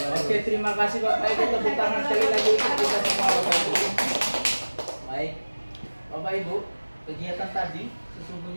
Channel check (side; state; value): both; inverted; correlation -1.00